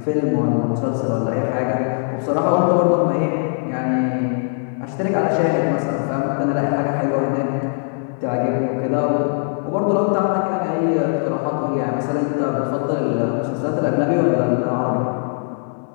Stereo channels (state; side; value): silent; right; 65 dB below the other